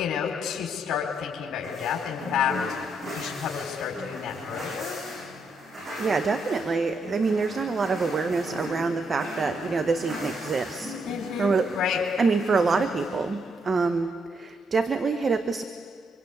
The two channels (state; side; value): normal; both; correlation 0.77